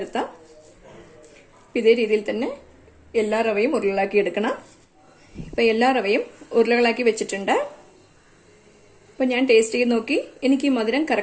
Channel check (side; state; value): both; identical; correlation 1.00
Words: ഇതേ രീതിയിൽ തന്നെ എല്ലാ റവയും ഉരുളകളാക്കി എടുക്കണം. ഇപ്പൊ എല്ലാ റവയും ഉരുളകളാക്കി വെച്ചിട്ടുണ്ട്. അപ്പൊ ഞാൻ ടേസ്റ്റ് ചെയ്ത് നോക്കി. എനിക്ക് ഈ മധുരം